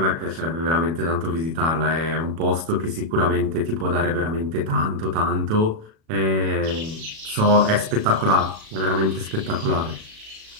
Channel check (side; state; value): left; late; 37 ms